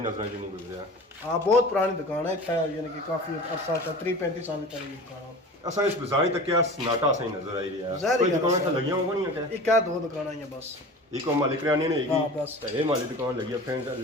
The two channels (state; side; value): normal; both; correlation 0.37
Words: च नहीं गुजरिया। हां बहुत पुरानी दुकान है इतना, यानी कि काफी अरसा 30-35 साल पहले की दुकान है। असा इस बाजार तक क्या सन्नाटा सही नजर आई रहा है, ज़ाहिर कोई है दुकान सर। तो लगी होगा नहीं है क्या? एक क्या दो दुकान आई है बस, एक और मालिक रानी नहीं हाँ, हैगी बस। तो ये मालिक दुकान लगी है फ्रेंड्स